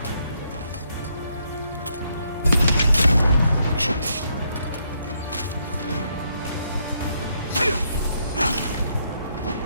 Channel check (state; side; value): inverted; both; correlation -0.75